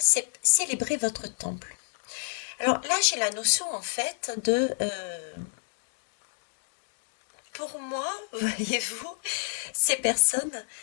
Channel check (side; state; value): right; silent; digital silence